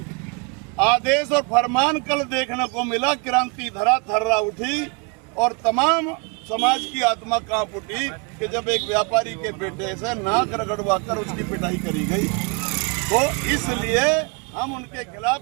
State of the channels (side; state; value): left; quieter; 32.6 dB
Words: आदेश और फरमान कल देखने को मिला। क्रांति धरा थर्रा उठी और तमाम समाज की आत्मा कांप उठी कि जब एक व्यापारी के बेटे से नाक रगड़वा कर उसकी पिटाई करी गई। तो इसलिए हम उनके